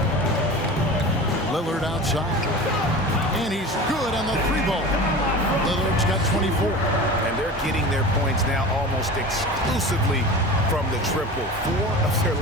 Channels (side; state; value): both; normal; correlation 0.34